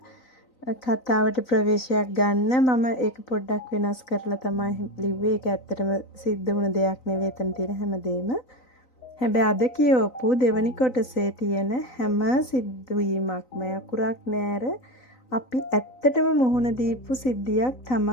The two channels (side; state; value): right; late; 3.9 ms